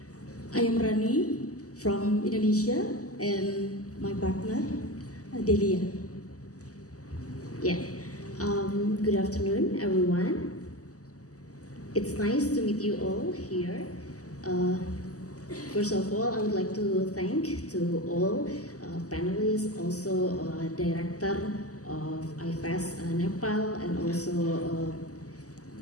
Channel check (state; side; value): late; right; 0.66 ms